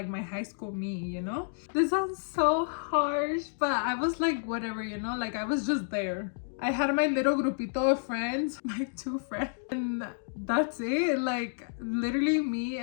my high school me, you know? This sounds so harsh, but I was like whatever, you know? Like I was just there. I had my little grupito of friends, my 2 friends, and that's it. Like literally me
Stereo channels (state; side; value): silent; right; digital silence